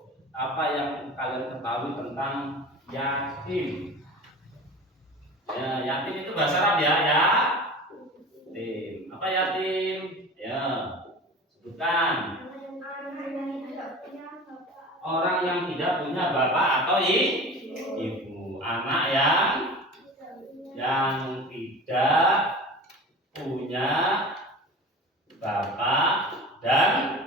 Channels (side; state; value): both; normal; correlation 0.36